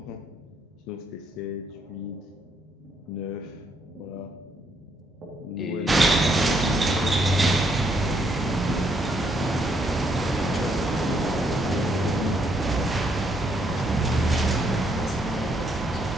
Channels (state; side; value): normal; both; correlation 0.72